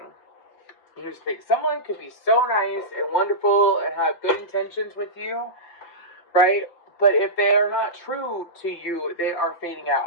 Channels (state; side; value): late; right; 5.8 ms